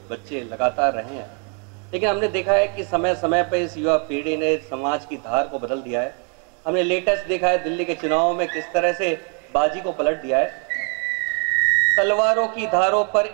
बच्चे लगातार रहे हैं, लेकिन हमने देखा है कि समय समय पर इस युवा पीढ़ी ने समाज की धार को बदल दिया है। हमने लेटेस्ट देखा है दिल्ली के चुनाव में किस तरह से बाजी को पलट दिया है। तलवारों की धारों पर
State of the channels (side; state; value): left; quieter; 39.6 dB